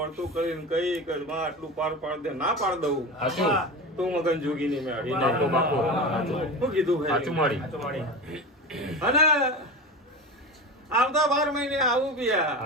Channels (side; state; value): both; normal; correlation 0.26